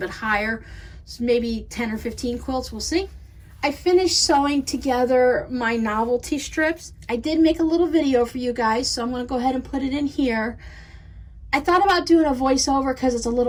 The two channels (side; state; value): both; identical; correlation 1.00